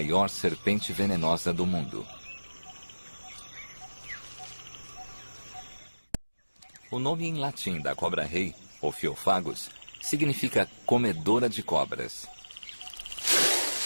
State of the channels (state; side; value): inverted; both; correlation -1.00